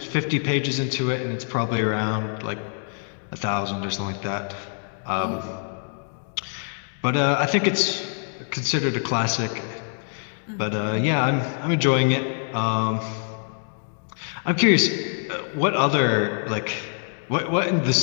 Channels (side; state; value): right; silent; 61 dB below the other